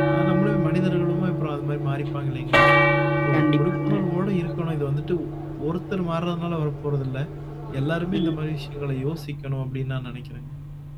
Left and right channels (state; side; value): identical; both; correlation 1.00